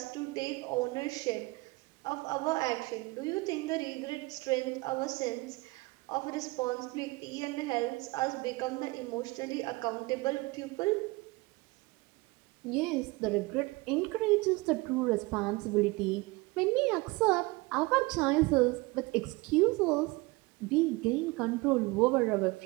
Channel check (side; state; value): left; quieter; 23.5 dB